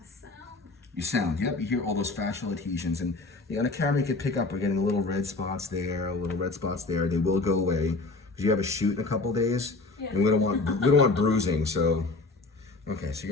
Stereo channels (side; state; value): right; quieter; 3.5 dB